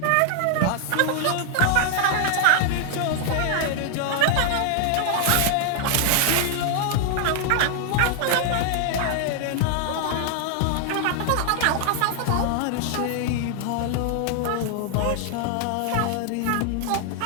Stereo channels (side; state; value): both; different; correlation 0.00